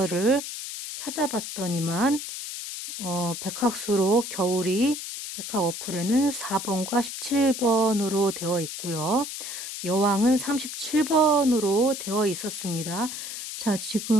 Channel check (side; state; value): left; noise; hiss, 7 dB below the sound